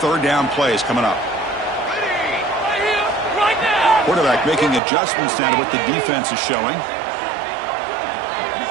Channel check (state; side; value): drops out; left; at 4.8 s